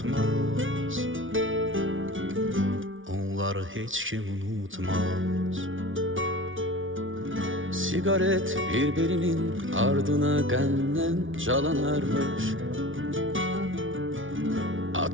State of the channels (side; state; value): left; late; 0.57 ms